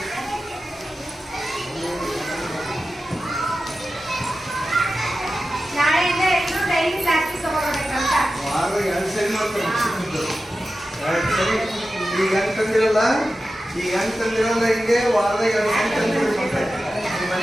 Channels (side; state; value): both; normal; correlation 0.93